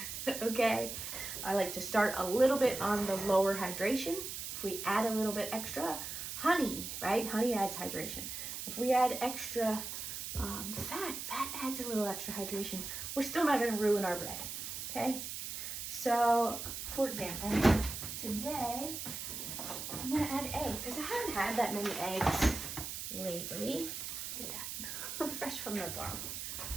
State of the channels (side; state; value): right; noise; hiss, 6 dB below the sound